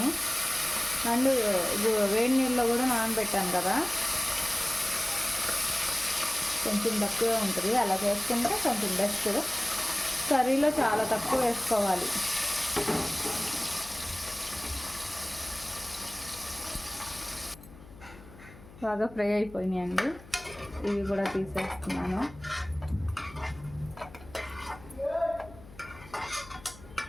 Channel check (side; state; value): left; noise; hum, 19 dB below the sound